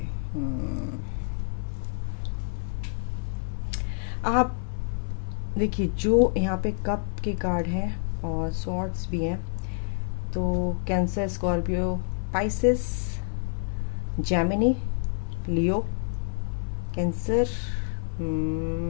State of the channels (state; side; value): silent; right; 59 dB below the other